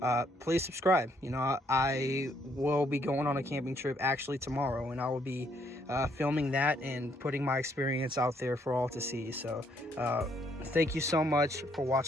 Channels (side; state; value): both; normal; correlation 0.70